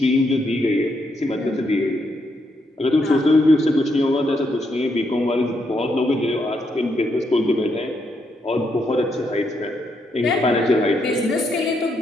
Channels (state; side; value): normal; both; correlation 0.78